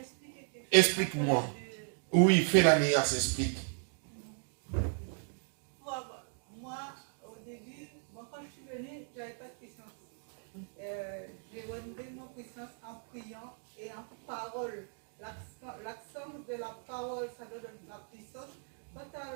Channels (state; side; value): silent; left; 54 dB below the other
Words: Explique-moi. Oui, fais la nuance, explique. Moi, au début, quand je suis venue, je n'avais pas de puissance. parole. L'accent de la parole, ça donne la puissance. Quand tu